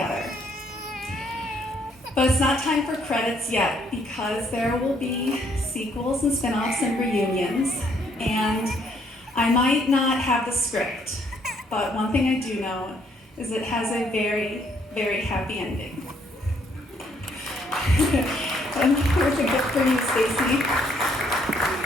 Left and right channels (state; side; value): normal; both; correlation 0.68